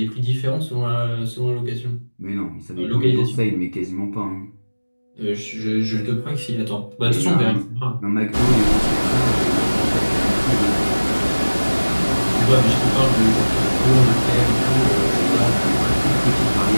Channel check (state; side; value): inverted; both; correlation -1.00